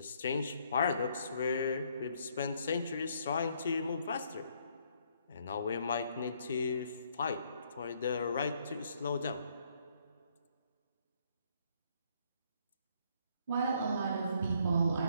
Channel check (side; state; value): both; inverted; correlation -0.68